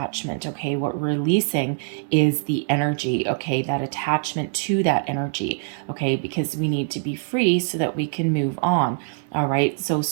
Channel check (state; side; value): silent; left; 63 dB below the other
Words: Okay, what we're releasing is the energy. Okay, that attachment to that energy. Okay, because we need to be free so that we can move on. All right, so